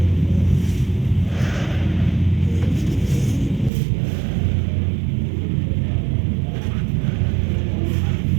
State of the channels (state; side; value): drops out; left; at 3.7 s